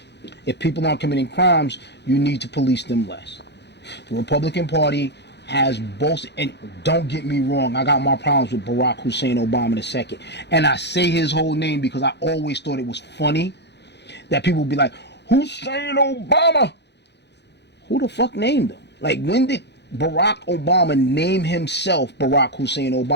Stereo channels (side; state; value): right; late; 0.50 ms